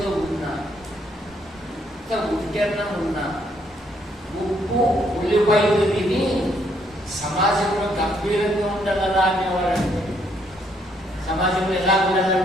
ఉన్నా, ఇంత ఉద్యమం ఉన్నా, ఉప్పు ఉల్లిపాయలు తిని సమాజంలో గంభీరంగా ఉండగలరా అనేవాడంటే. సమాజంలో ఎలా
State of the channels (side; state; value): both; normal; correlation 0.70